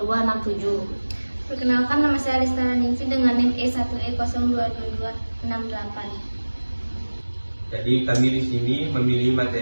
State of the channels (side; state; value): both; inverted; correlation -1.00